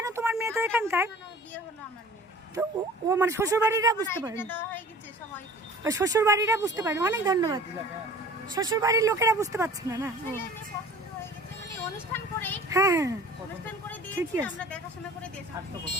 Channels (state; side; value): normal; both; correlation 0.46